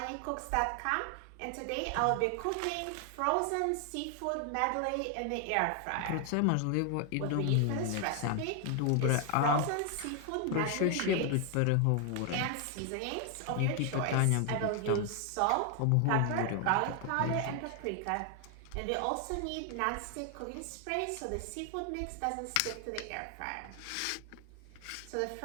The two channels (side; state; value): both; different; correlation 0.00